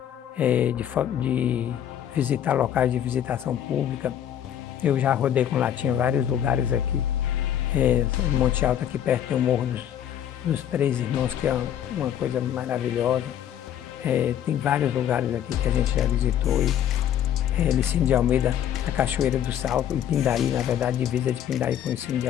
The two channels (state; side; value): quieter; right; 10.2 dB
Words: de visitar locais de visitação pública. Eu já rodei com Latinha vários lugares aqui. Monte Alto, aqui perto, tem o Morro dos Três Irmãos, que é uma coisa maravilhosa. Tem vários lugares aqui que a gente já visitou. Licínio de Almeida, a Cachoeira do Salto, e Pindaí, na verdade, divisa de Pindaí com Licínio de